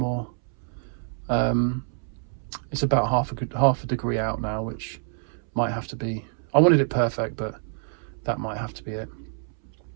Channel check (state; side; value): silent; left; 60 dB below the other